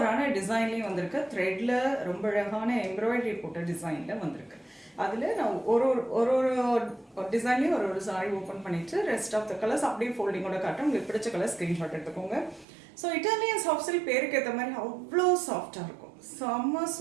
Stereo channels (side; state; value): left; drops out; at 12.7 s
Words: டிசைன்லேயும் வந்திருக்கு, த்ரெட்டில் ரொம்ப அழகான எம்ப்ராய்டரி போட்ட டிசைனில் வந்திருக்கு. அதில் நான் ஒரு ஒரு ஒரு டிசைன்லேயும் ஒரு சாரி ஓப்பன் பண்ணிவிட்டு ரெஸ்ட் ஆஃப் த கலர்ஸ் அப்படியே ஃபோல்டிங்கோட காட்டும். உங்களுக்கு பிடிச்ச கலர் ஸ்க்ரீன்ஷாட் எடுத்துக்கோங்க. ஸோ இட்டாலியன் சாஃப்ட் சில்க் பேருக்கு ஏற்ற மாதிரி அவ்வளோ சாஃப்டாக இருக்கும், செம்ம